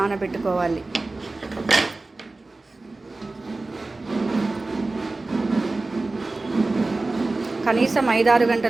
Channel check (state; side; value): quieter; left; 3.3 dB